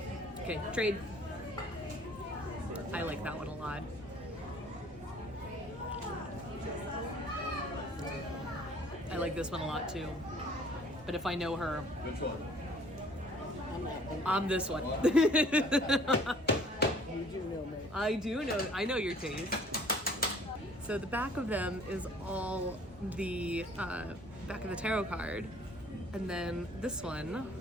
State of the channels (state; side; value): normal; both; correlation 0.55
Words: Okay, trade. I like that one a lot. I like this one a lot too. But if I know her, Which one? I'm this one. You do know me. I know your taste. So the back of them is all the back of the tarot card. And then this one